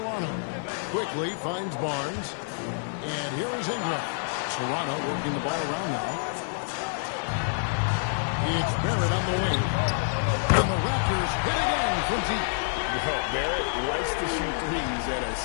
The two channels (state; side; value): silent; right; digital silence